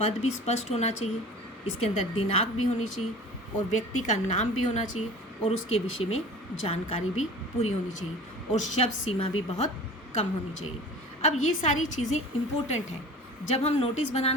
भी स्पष्ट होना चाहिए, इसके अंदर दिनांक भी होनी चाहिए और व्यक्ति का नाम भी होना चाहिए और उसके विषय में जानकारी भी पूरी होनी चाहिए और शब्द सीमा भी बहुत कम होनी चाहिए। अब ये सारी चीज़ें इम्पोर्टेंट हैं। जब हम नोटिस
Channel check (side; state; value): both; normal; correlation 0.40